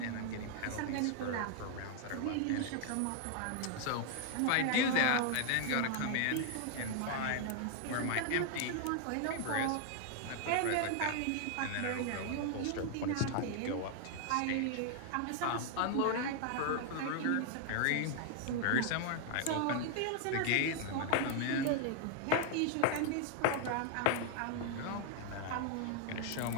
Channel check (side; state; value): both; different; correlation 0.00